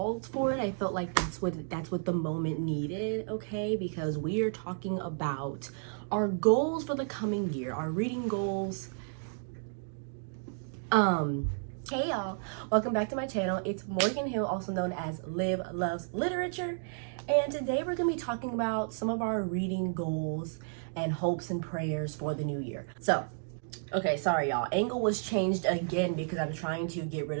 for it. I felt like that's what the moment needed, okay? Because we are talking about our goals for the coming year, our reading goals. Hey y'all, welcome back to my channel. It's Morgan Hill, also known as Liv Loves Literature. And today we're gonna be talking about some of our reading goals and hopes and prayers for the new year. So, okay, sorry y'all. Angle was changed again because I'm trying to get rid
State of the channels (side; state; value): left; silent; digital silence